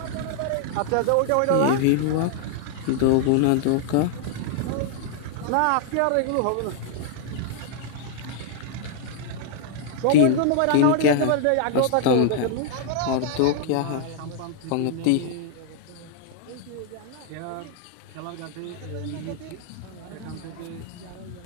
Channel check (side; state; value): both; different; correlation 0.00